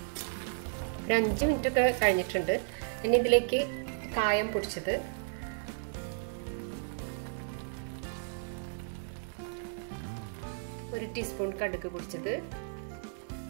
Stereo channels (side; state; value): left; silent; digital silence